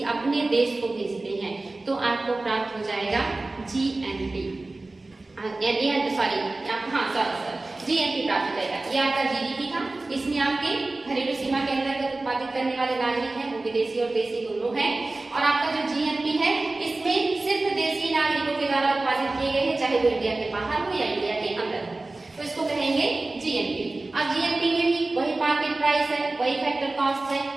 अपने देश को भेजते हैं, तो आपको प्राप्त हो जाएगा जीएनपी। जीएनपी प्राप्त हो जाएगा। ये आपका जीडीपी था, इसमें आपके घरेलू सीमा के अंतर्गत उत्पादित करने वाले नागरिक हैं वो विदेशी और देशी दोनों हैं, और आपका जो जीएनपी है इसमें सिर्फ देशी नागरिकों के द्वारा उत्पादित किए गए हैं चाहे वो इंडिया के बाहर हो या इंडिया के अंदर हो, तो इसको कहेंगे जीएनपी। अब जीएनपी में भी वही मार्केट प्राइस है, वही फैक्टर कॉस्ट है,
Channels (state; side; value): quieter; left; 3.1 dB